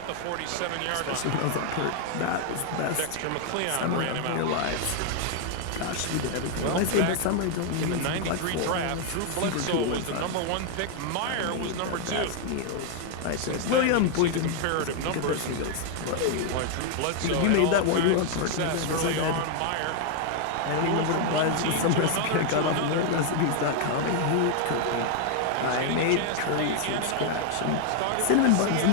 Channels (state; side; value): different; both; correlation 0.00